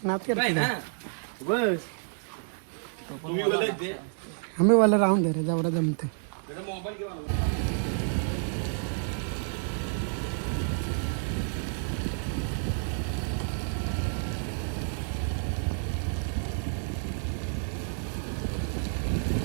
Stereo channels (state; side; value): silent; left; 58 dB below the other